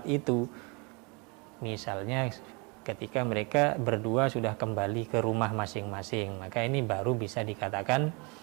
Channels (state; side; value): quieter; left; 30.4 dB